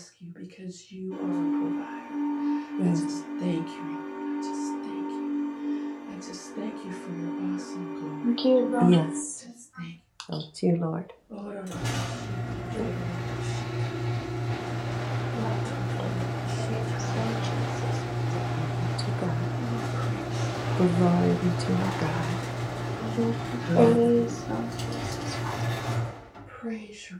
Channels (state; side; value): identical; both; correlation 1.00